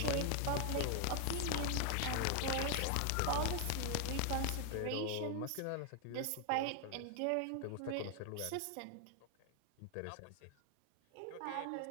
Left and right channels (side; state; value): both; different; correlation 0.00